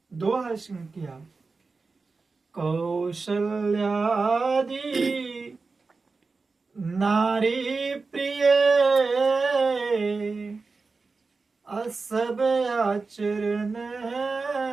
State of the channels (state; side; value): quieter; left; 4.2 dB